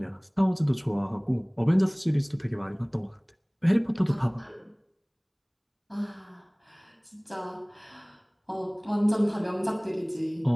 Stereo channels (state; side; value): identical; both; correlation 1.00